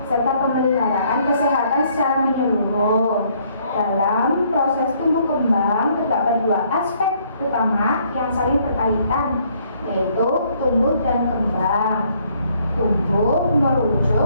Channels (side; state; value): both; inverted; correlation -0.66